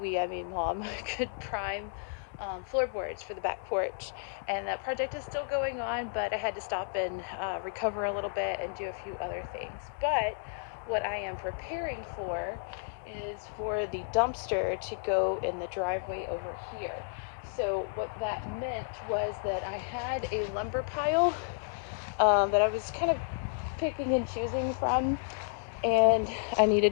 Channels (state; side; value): silent; right; digital silence